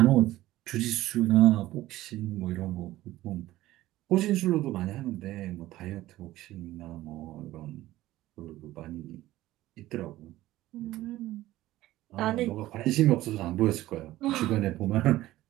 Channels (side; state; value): left; quieter; 15.9 dB